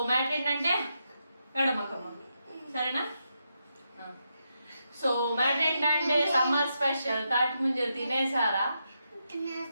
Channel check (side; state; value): both; inverted; correlation -0.84